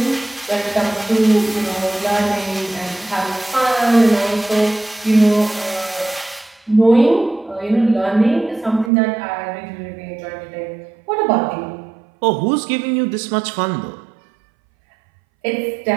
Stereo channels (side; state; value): left; drops out; at 8.9 s